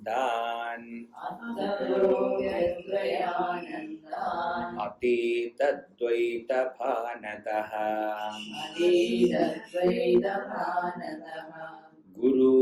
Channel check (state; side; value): identical; both; correlation 1.00